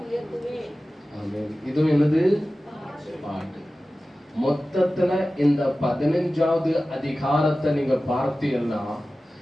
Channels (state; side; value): normal; both; correlation 0.96